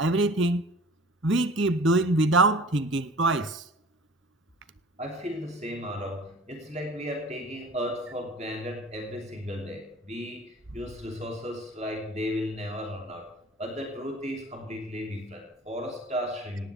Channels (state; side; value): normal; both; correlation 0.44